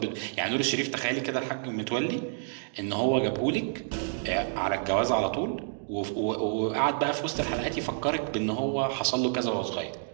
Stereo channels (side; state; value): left; silent; digital silence